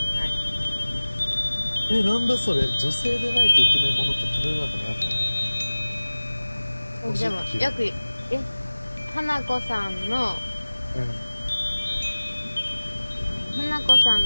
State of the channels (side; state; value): both; inverted; correlation -1.00